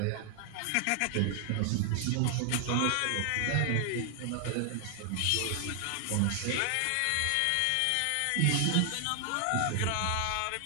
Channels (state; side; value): different; both; correlation 0.00